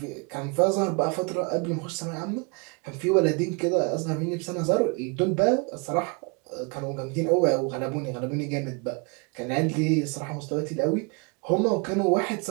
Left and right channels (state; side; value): quieter; left; 32.6 dB